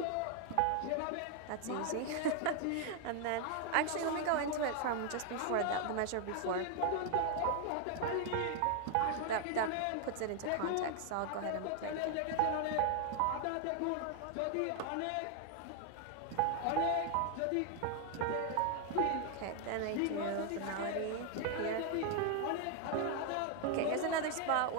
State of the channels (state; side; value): different; both; correlation 0.00